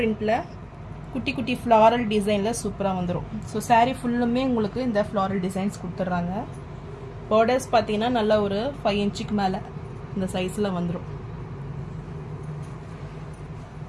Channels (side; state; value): both; identical; correlation 1.00